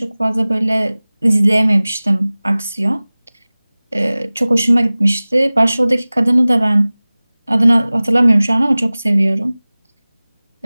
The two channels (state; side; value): inverted; both; correlation -0.99